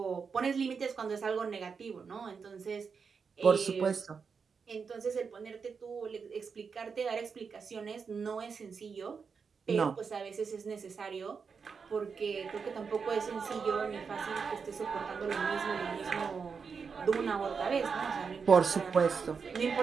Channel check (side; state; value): left; quieter; 5.7 dB